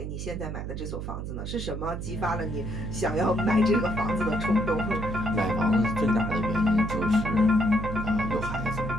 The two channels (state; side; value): noise; right; hum, 6 dB below the sound